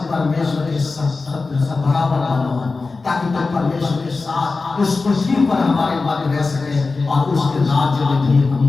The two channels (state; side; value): quieter; right; 3.9 dB